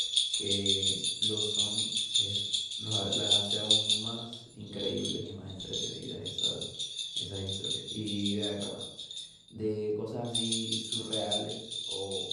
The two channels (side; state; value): both; identical; correlation 1.00